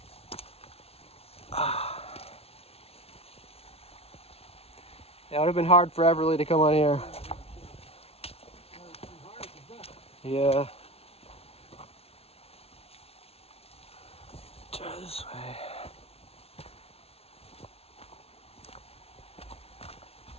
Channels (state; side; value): late; right; 0.29 ms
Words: It would have been hard for Everly to come on here. Yeah. Try this way.